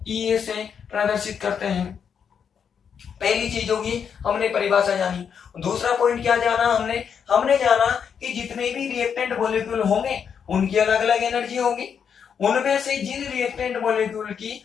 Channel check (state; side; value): quieter; right; 7.2 dB